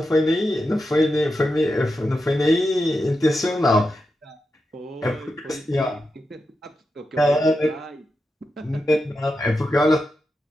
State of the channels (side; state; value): both; normal; correlation 0.88